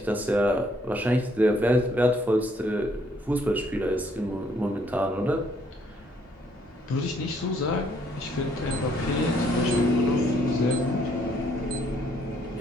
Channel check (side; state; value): both; normal; correlation 0.67